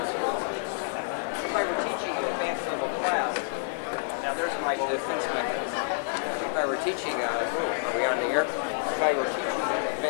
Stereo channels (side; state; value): right; silent; 59 dB below the other